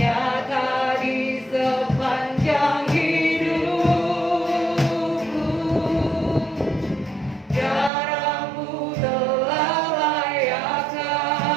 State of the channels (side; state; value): left; drops out; at 7.9 s